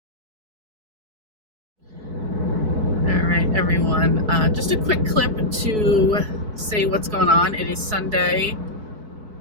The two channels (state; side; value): late; left; 4.6 ms